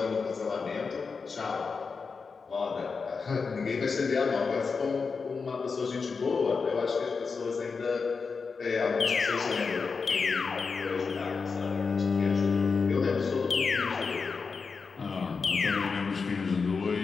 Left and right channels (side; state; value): right; quieter; 4.9 dB